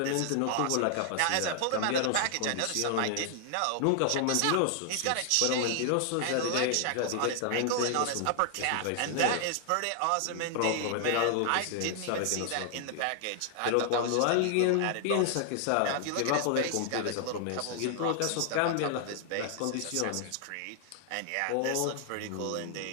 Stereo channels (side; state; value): both; different; correlation 0.00